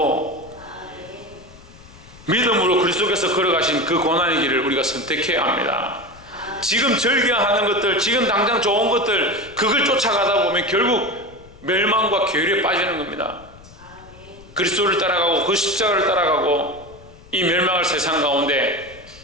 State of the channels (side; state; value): left; noise; rumble, 22 dB below the sound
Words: 믿음으로 그리스도께서 걸어가신 그 고난의 길을 우리가 선택해야 합니다. 지금 즐겨하는 것들, 지금 당장 좋은 것들, 그걸 쫓아가다 보면 결국 멸망과 괴리에 빠지는 겁니다. 그리스도를 따라가고 그 십자가를 따라가고 이 멸망할 세상 가운데